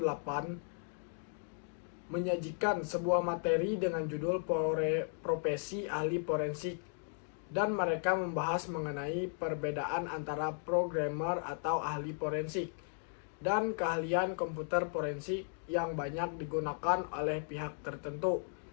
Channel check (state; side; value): silent; right; 54 dB below the other